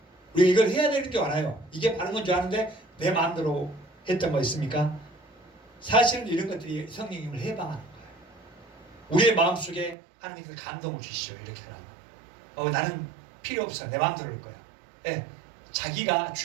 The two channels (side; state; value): left; drops out; at 10.0 s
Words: 우리가 이걸 해야 되는 줄 알아요. 이게 바른 건 줄 아는데 내 마음대로 했던 거 있습니까? 사실은 이런 것들이 성령님을 해방하는 거예요. 우리의 마음속에 하나님께서 감동을 주시죠. 이렇게 하라고. 나는 필요 없어. 내 마음대로 할 거야. 예, 자기가